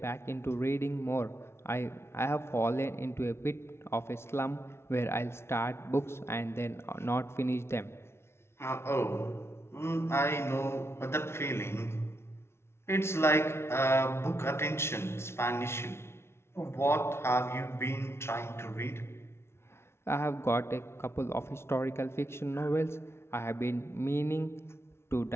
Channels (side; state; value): right; late; 0.12 ms